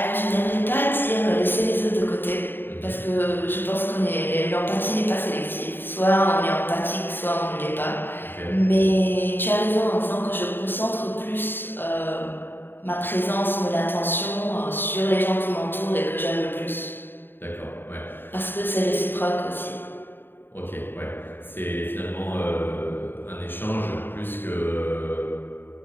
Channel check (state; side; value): late; right; 0.096 ms